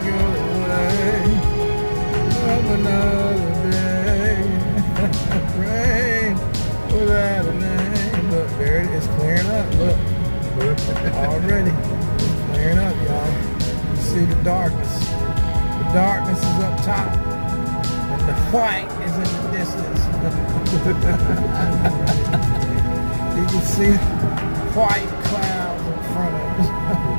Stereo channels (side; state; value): both; inverted; correlation -1.00